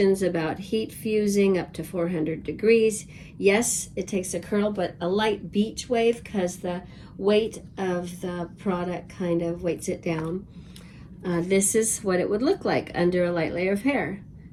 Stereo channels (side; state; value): both; identical; correlation 1.00